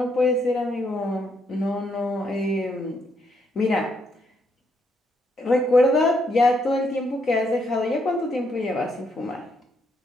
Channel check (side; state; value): both; normal; correlation 0.75